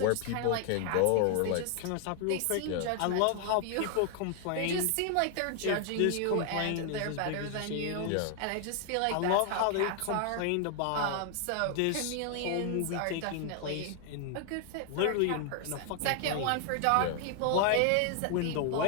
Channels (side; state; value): both; different; correlation 0.00